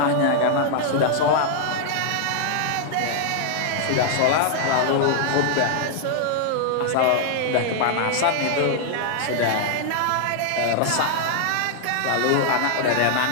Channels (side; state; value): both; different; correlation -0.01